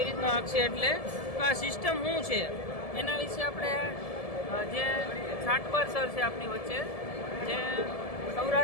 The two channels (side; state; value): right; late; 1.7 ms